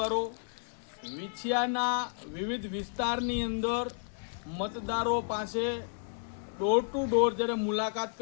વિછિયાના વિવિધ વિસ્તારની અંદર મતદારો પાસે ડોર ટુ ડોર જ્યારે મુલાકાત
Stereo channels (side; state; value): right; silent; 56 dB below the other